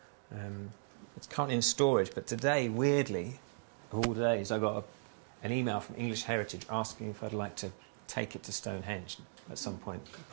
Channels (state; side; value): silent; left; digital silence